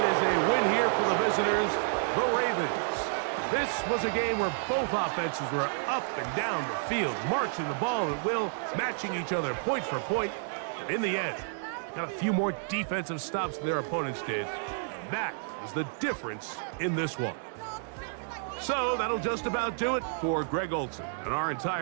is a win here for the visitors, the Ravens. This was a game where both offenses were up and down the field, marching the ball at will, matching each other point for point. And in the end, got a few more defensive stops than their opponents did. That is the difference in this one. So that'll just about do it for Greg Olson and our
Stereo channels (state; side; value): silent; left; digital silence